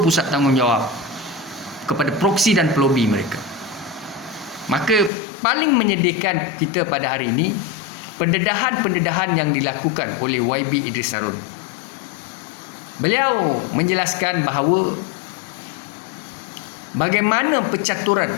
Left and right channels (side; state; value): right; drops out; at 5.1 s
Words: pusat tanggungjawab kepada proksi dan pelobi mereka. Maka paling menyedihkan kita pada hari ini, pendedahan-pendedahan yang dilakukan oleh YB Idris Harun. Beliau menjelaskan bahawa bagaimana pencaturan